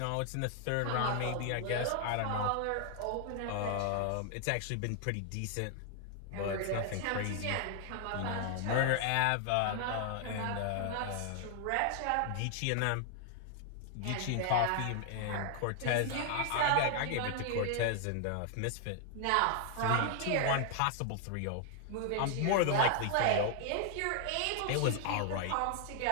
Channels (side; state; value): both; different; correlation 0.00